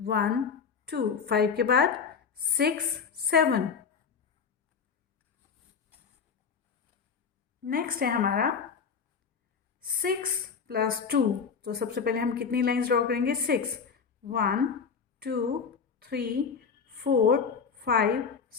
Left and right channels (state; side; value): quieter; right; 6.0 dB